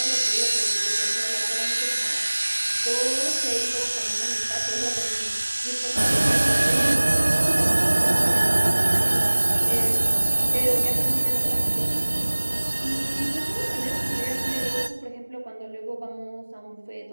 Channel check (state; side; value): inverted; both; correlation -1.00